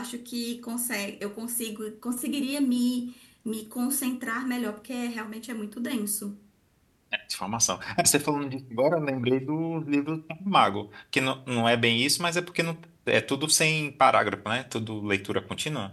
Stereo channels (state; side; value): identical; both; correlation 1.00